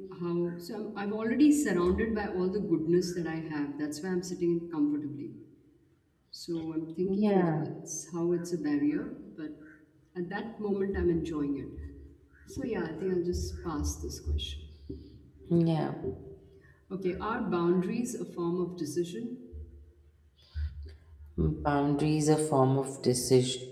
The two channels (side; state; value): both; identical; correlation 1.00